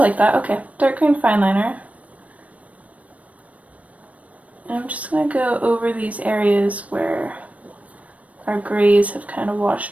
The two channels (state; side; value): late; left; 0.067 ms